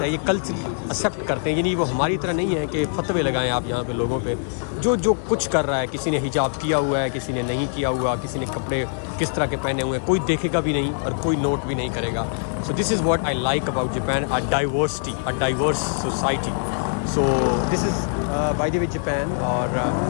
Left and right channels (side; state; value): right; silent; 63 dB below the other